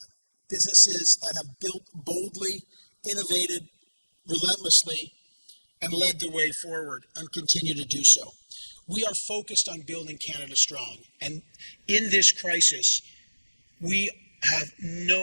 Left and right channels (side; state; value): both; inverted; correlation -1.00